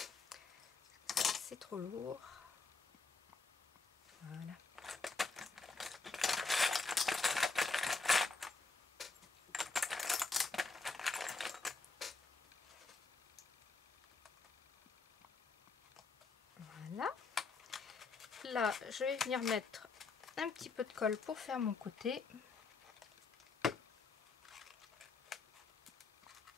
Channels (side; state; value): right; quieter; 4.2 dB